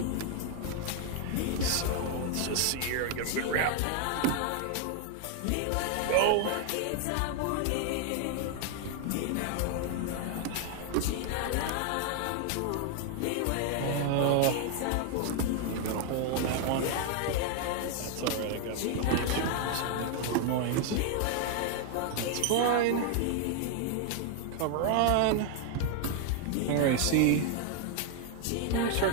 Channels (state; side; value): different; both; correlation 0.00